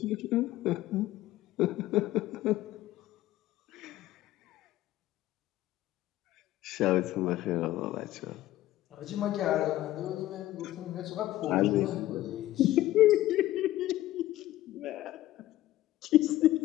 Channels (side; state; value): right; quieter; 15.1 dB